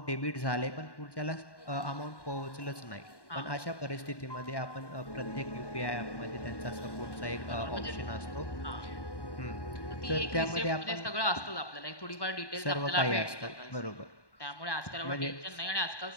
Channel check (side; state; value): right; late; 1.1 ms